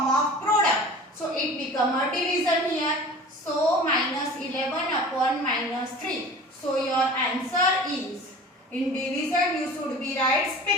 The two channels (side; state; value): both; normal; correlation 0.41